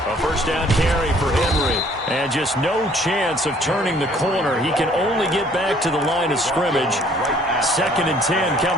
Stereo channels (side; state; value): both; normal; correlation 0.59